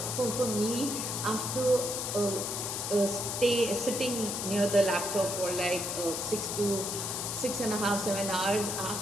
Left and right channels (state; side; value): noise; left; hiss, 3 dB below the sound